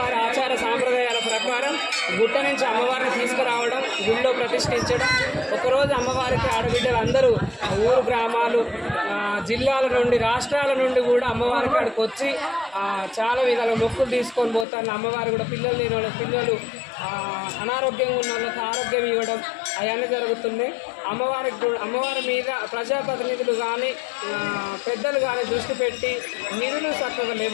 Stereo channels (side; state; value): right; drops out; at 14.7 s